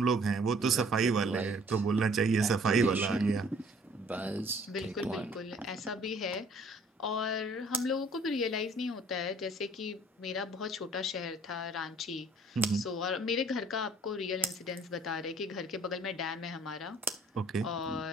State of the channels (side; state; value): both; normal; correlation 0.56